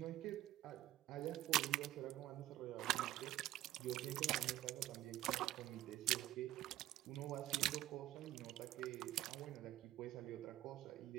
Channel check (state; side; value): quieter; left; 14.7 dB